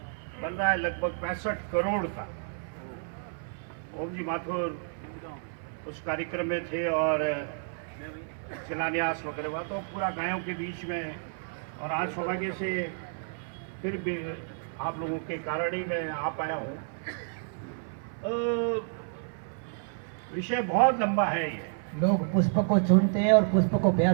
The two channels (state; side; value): silent; left; 58 dB below the other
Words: बन रहा है लगभग 65 करोड़ का। ओम जी माथुर उस कार्यक्रम में थे और शिलान्यास वगैरह हुआ, तो पूरा गायों के बीच में। और आज सौभाग्य से फिर भी आप लोगों के कारण ही मैं आ पाया हूँ। विषय बहुत लंबा है ये। लोग पुष्प को चुनते हैं और पुष्प को